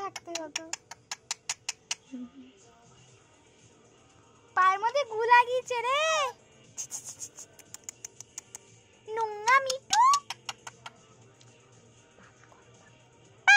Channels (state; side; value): identical; both; correlation 1.00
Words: থাকতে হতো। পায়ের মধ্যে গু লাগিয়েছে রে, নোংরা মিটু।